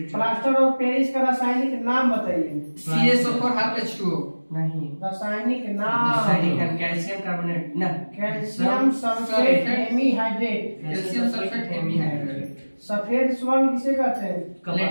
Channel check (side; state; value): both; inverted; correlation -1.00